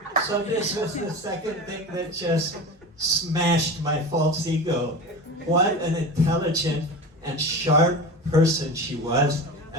So this was the second thing that just smashed my false ego. What an intelligent and sharp person she was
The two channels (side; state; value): both; normal; correlation 0.30